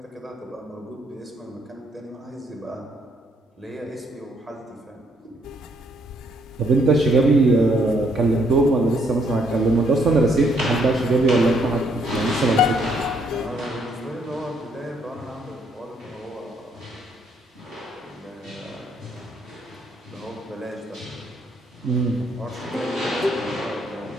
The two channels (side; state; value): both; normal; correlation 0.69